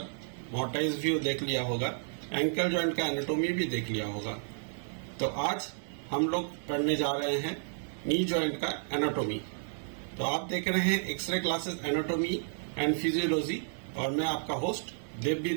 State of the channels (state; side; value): silent; left; 57 dB below the other